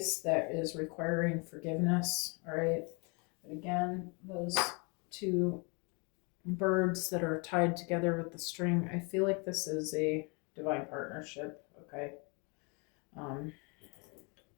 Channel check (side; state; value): right; quieter; 32.4 dB